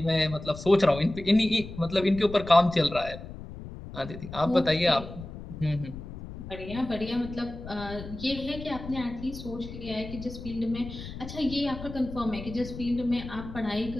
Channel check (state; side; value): noise; left; rumble, 11 dB below the sound